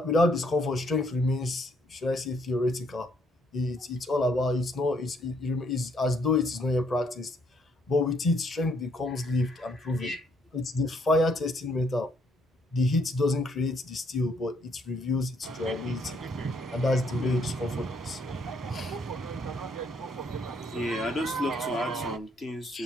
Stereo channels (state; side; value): normal; both; correlation 0.69